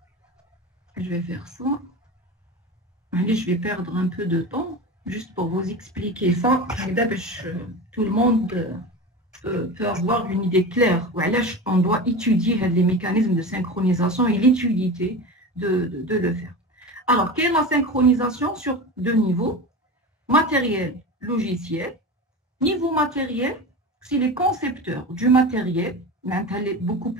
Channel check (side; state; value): both; normal; correlation 0.28